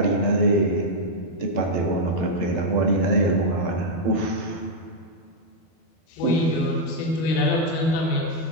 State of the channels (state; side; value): late; right; 12 ms